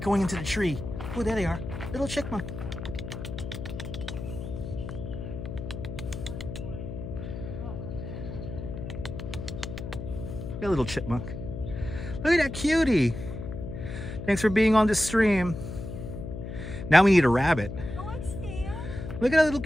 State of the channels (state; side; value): noise; left; hum, 7 dB below the sound